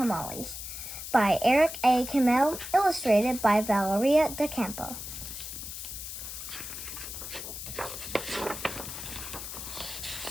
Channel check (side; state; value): left; noise; hiss, 8 dB below the sound